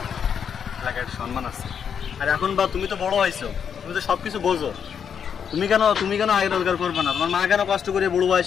এলাকার সম্মান আছে। আর এখন বা তুমি তো বড় হয়েছো, তুমি তো সব কিছু বোঝো, তুমি কেন আয় রোজগার করবে না? তোমার মা কেন কষ্ট করে বুড়ো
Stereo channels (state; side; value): quieter; right; 7.5 dB